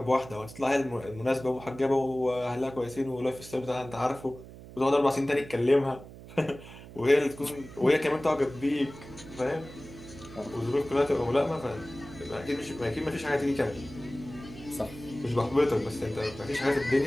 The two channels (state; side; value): noise; right; hum, 16 dB below the sound